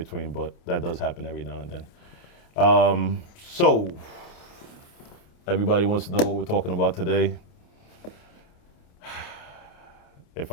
but that does happen every now and then. So everybody wants to know what we're talking about today. If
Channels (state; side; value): late; right; 29 ms